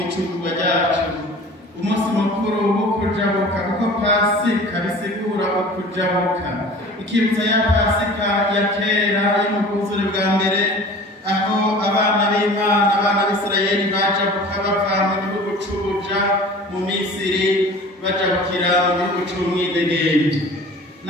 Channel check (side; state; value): both; normal; correlation 0.43